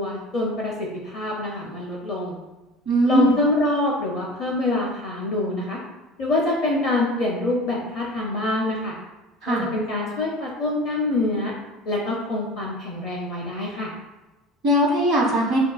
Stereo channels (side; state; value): both; normal; correlation 0.37